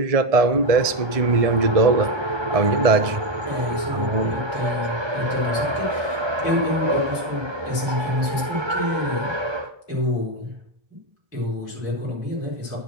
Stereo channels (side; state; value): left; late; 1.7 ms